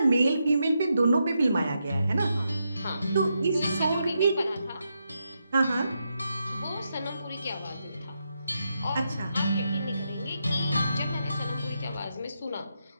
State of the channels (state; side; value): inverted; both; correlation -0.83